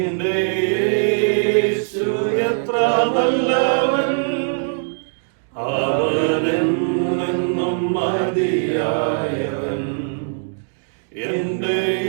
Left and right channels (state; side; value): silent; left; digital silence